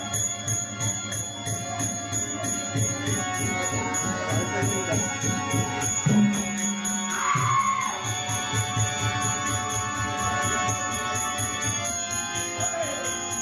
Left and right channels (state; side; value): identical; both; correlation 1.00